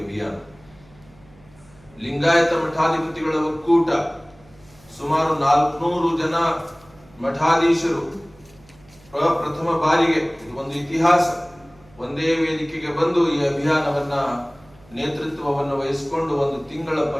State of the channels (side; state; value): right; noise; hum, 27 dB below the sound